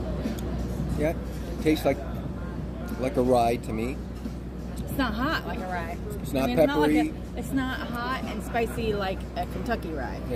Yeah, tastes like a rye to me. It's not hot like a rye. It's not peppery. It's not hot and spicy like a Kentucky rye.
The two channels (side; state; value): both; identical; correlation 1.00